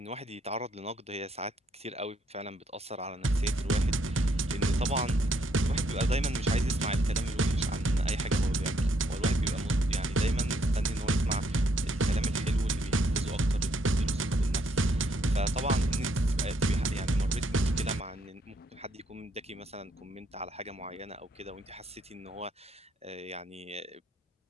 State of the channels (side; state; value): both; normal; correlation 0.71